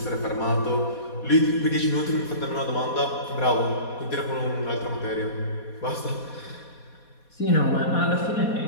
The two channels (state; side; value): late; right; 4.2 ms